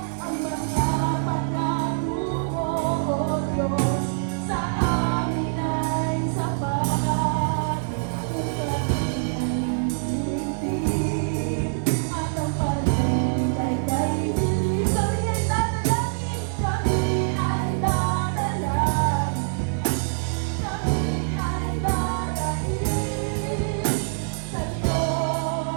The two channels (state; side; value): silent; left; digital silence